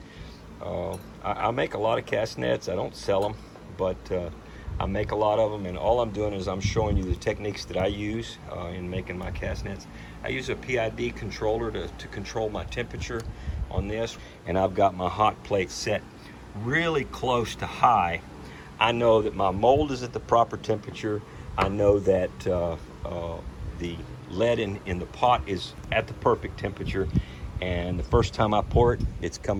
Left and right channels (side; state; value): both; identical; correlation 1.00